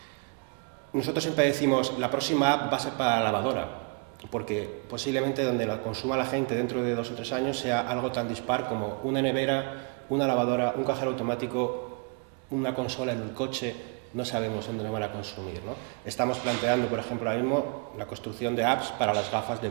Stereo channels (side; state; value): left; quieter; 35.5 dB